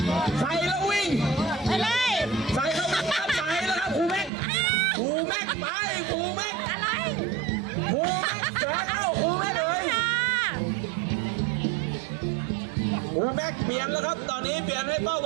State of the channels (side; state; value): left; drops out; at 4.3 s